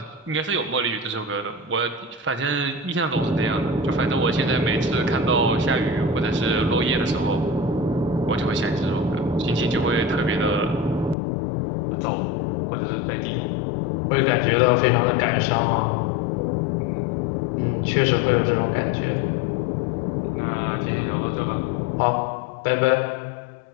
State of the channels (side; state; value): right; drops out; at 11.2 s